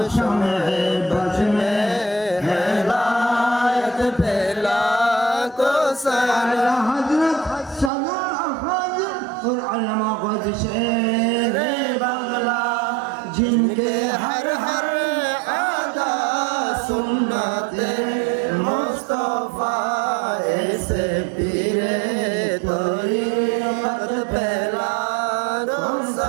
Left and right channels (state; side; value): drops out; left; at 7.9 s